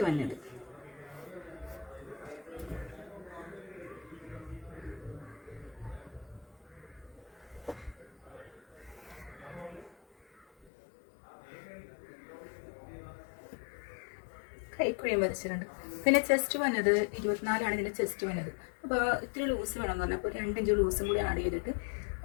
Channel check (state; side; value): drops out; right; at 10.7 s